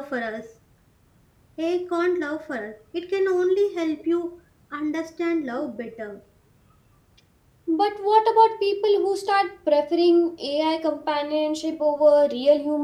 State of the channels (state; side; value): identical; both; correlation 1.00